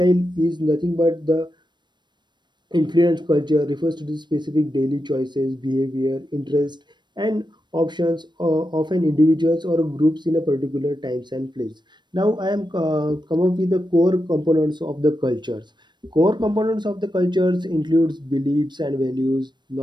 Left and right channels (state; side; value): late; left; 0.22 ms